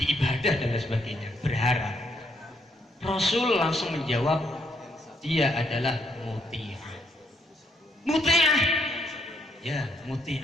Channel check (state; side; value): normal; both; correlation 0.73